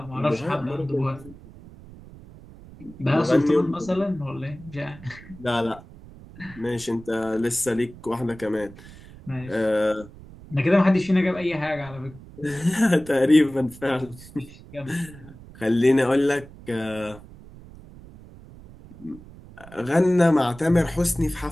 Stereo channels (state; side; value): noise; right; rumble, 19 dB below the sound